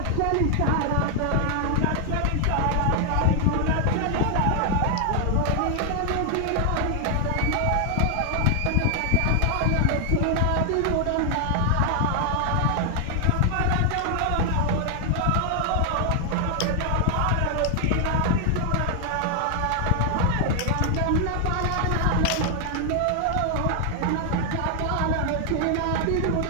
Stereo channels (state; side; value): different; both; correlation 0.00